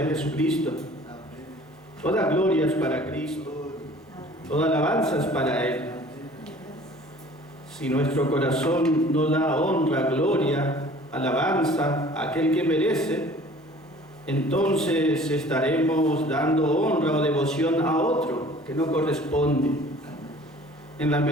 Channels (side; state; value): both; normal; correlation 0.49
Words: Jesucristo. Toda gloria es para Cristo. Toda alabanza es para Él. Si nuestro corazón no da honra, gloria, alabanza a aquel que merece, entonces estaremos dando honra o devoción a otro que no corresponde. En la